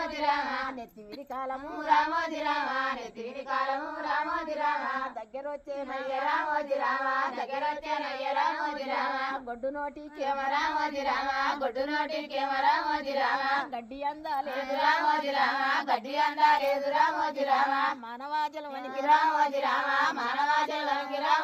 రామ నెత్తివిరి కాలము రామోజీ రామ నెత్తివిరి కాలము రామోజీ రామ దగ్గరొచ్చే నయ్య రామోజీ రామ దగ్గరొచ్చే నయ్య రామోజీ రామ గొడ్డు నోటికేమ రామోజీ రామ గొడ్డు నోటికేమ రామోజీ రామ గడ్డి అందాలేదు రామోజీ రామ గడ్డి అందాలేదు రామోజీ రామ మానవాజల వనికి రామోజీ రామ మానవాజల వనికి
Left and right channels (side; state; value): both; identical; correlation 1.00